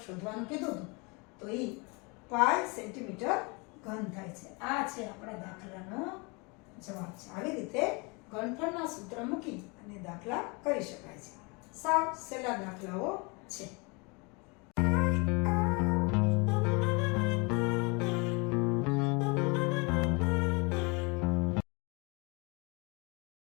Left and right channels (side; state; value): right; quieter; 29.6 dB